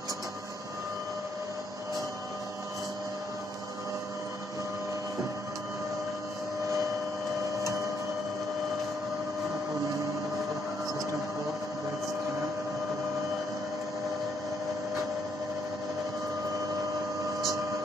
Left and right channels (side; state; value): both; normal; correlation 0.73